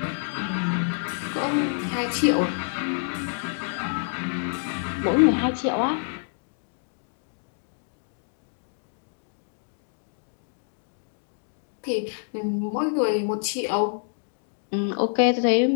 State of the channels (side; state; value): right; silent; digital silence